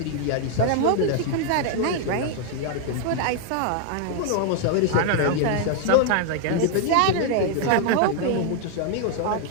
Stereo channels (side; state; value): both; different; correlation 0.00